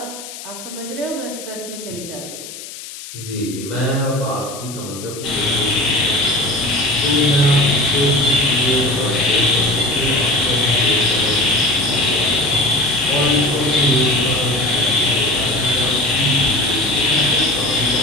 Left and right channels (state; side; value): noise; left; hiss, 13 dB below the sound